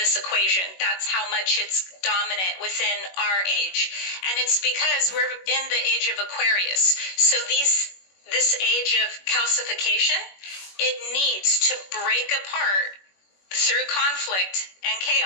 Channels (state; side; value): late; right; 21 ms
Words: equation. That's how much it's dominant within our age. And it's because we're in the age of Aquarius. So this age of calcification, it needs to break apart through conflict and